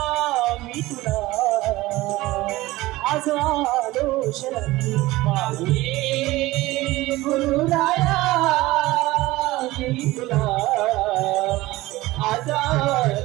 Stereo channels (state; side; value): quieter; left; 18.7 dB